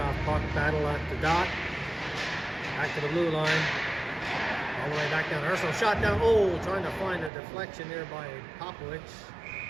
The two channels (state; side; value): drops out; left; at 7.3 s